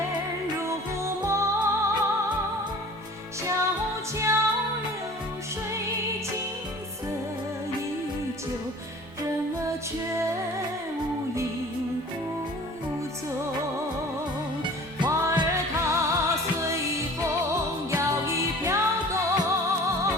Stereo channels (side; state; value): both; normal; correlation 0.45